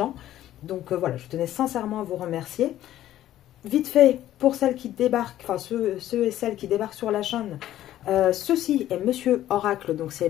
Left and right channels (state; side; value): quieter; right; 13.1 dB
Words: Donc voilà, je tenais sincèrement à vous remercier. Vite fait, pour celles qui débarquent, enfin ceux et celles qui débarquent sur la chaîne, ceci est Monsieur Oracle, donc c'est